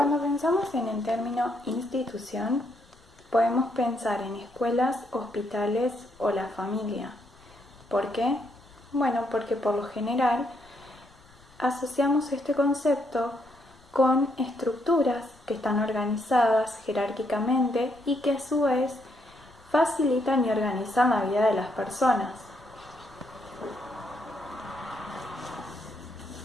pensamos en el término institución, podemos pensar en escuelas, hospitales o la familia. ¿Por qué? Bueno, porque por lo general asociamos este concepto con estructuras que están organizadas jerárquicamente y que a su vez facilitan y organizan la vida de las personas.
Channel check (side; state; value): left; noise; rumble, 29 dB below the sound